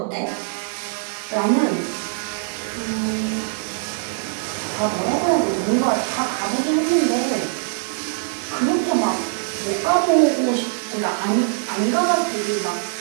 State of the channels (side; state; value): left; silent; digital silence